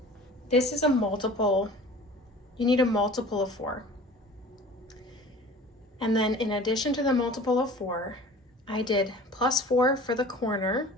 this is a multiple. You need a multiple of 4. And then in addition to the multiple of 4, I did +4 for the corner.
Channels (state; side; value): normal; both; correlation 0.43